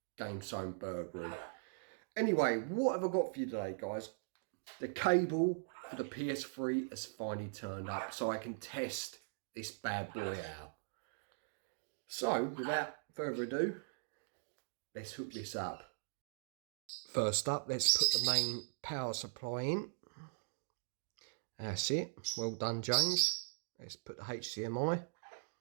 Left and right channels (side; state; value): left; silent; digital silence